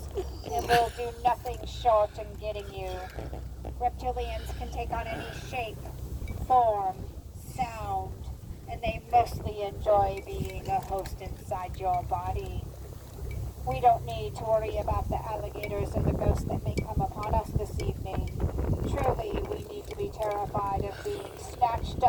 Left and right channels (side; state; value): both; identical; correlation 1.00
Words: and will do nothing short in getting you. Reptilians can take on any shape, form, sound, and they mostly enjoy being a host inside your body. We don't need to worry about the alligators or the ghosts that may come upon us this evening. Truly, we need to be terrified of being snatched